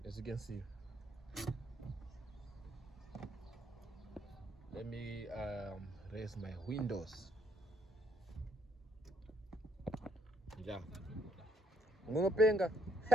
as you can see. Let me raise my windows. Yeah. Ngunopenga.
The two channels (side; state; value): both; normal; correlation 0.71